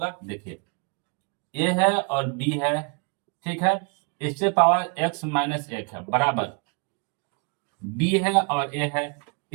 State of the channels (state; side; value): quieter; left; 36.7 dB